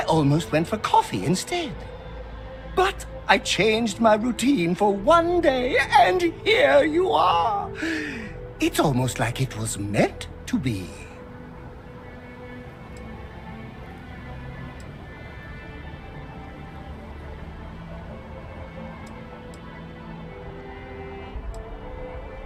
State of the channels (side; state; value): both; identical; correlation 1.00